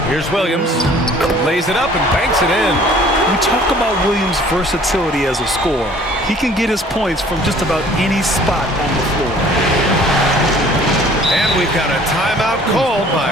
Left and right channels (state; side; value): normal; both; correlation 0.53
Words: Here's Williams. Lays it up and banks it in. We talk about Williams' versatility as a scorer. He can get his points from just about any spot on the floor. And we've got a timeout called by